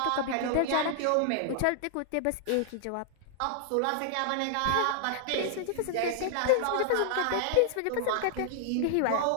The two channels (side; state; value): both; different; correlation 0.00